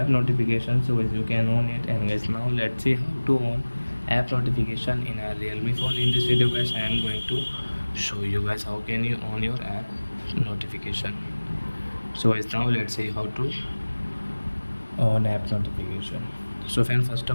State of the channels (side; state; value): both; inverted; correlation -1.00